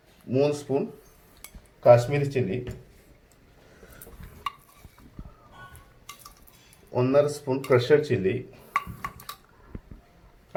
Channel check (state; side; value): identical; both; correlation 1.00